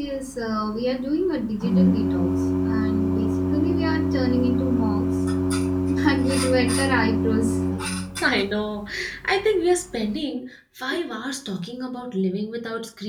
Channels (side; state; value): both; identical; correlation 1.00